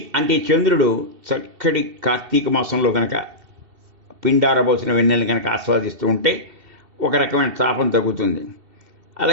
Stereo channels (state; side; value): late; left; 2.7 ms